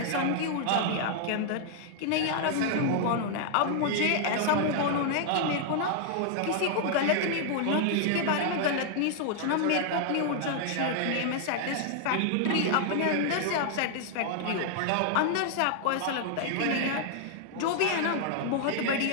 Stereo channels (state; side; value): different; both; correlation -0.01